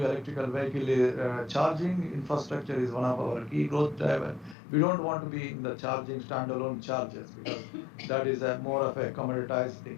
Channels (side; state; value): right; drops out; at 4.5 s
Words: electrical vehicle charging infrastructure is one of our key growth drivers. We don't want to be in the charging standalone chargers because that is more of a commoditized